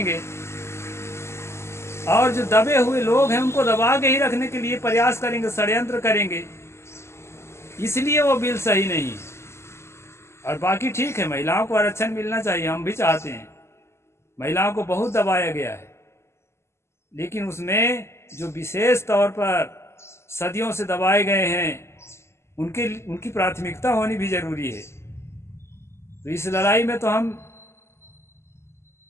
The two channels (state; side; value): late; right; 0.13 ms